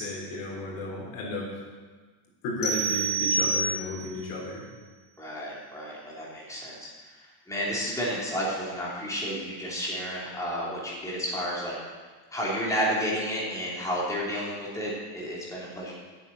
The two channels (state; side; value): normal; both; correlation -0.08